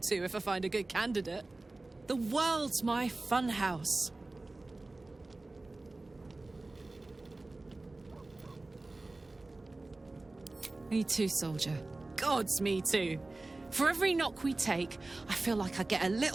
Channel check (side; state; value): left; quieter; 3.1 dB